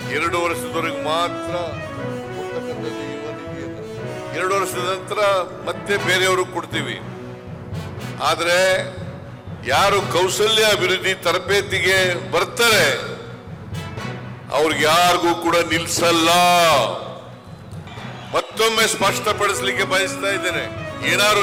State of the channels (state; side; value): identical; both; correlation 1.00